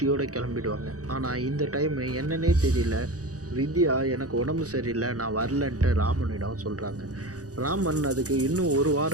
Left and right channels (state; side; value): late; left; 0.67 ms